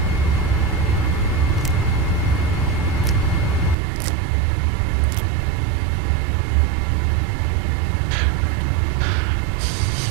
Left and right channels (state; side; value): drops out; left; at 3.8 s